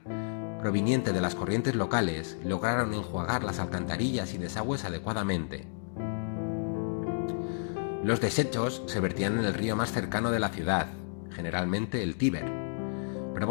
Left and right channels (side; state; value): right; silent; digital silence